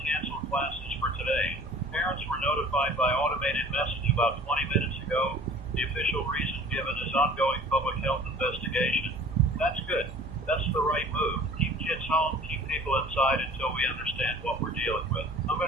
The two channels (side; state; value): both; normal; correlation 0.46